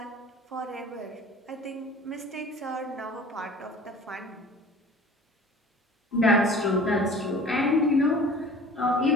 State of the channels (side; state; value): both; normal; correlation 0.45